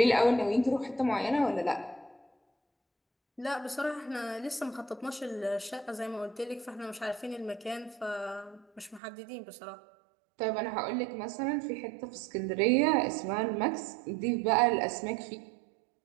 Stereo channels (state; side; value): drops out; left; at 9.0 s